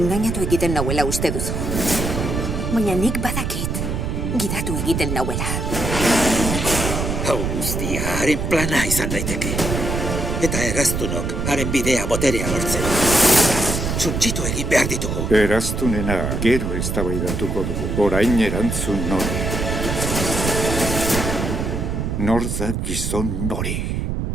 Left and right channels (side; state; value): right; noise; rumble, 2 dB below the sound